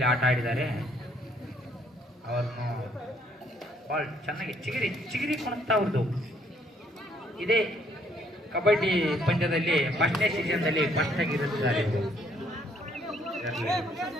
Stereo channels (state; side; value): normal; both; correlation 0.66